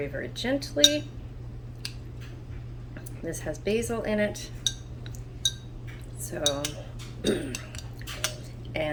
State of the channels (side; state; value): both; identical; correlation 1.00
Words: very gently. This has basil in it, so,